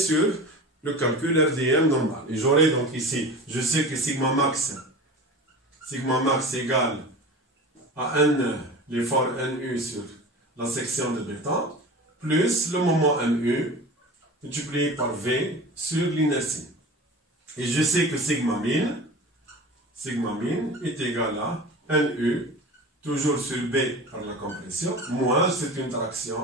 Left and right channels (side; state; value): both; normal; correlation 0.34